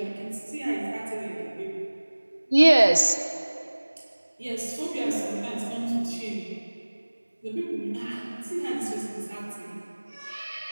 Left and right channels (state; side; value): inverted; both; correlation -1.00